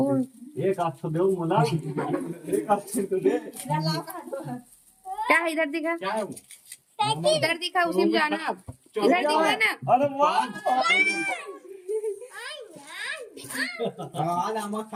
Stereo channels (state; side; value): identical; both; correlation 1.00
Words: एक हाथ तो दे मुला, एक हाथ से तो दे। क्या है इधर दिखा? क्या है वो? इधर दिखा, उसी में जाना। अब इधर दिखा ना। अरे वाह, हाँ नमक